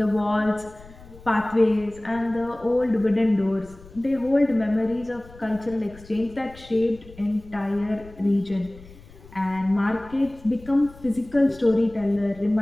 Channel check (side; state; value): left; noise; rumble, 21 dB below the sound